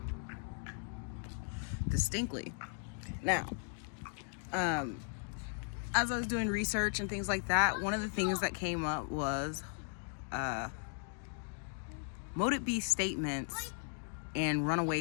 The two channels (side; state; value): right; silent; 53 dB below the other